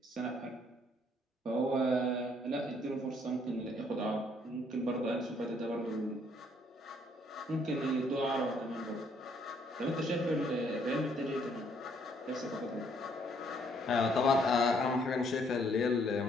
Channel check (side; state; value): both; normal; correlation 0.67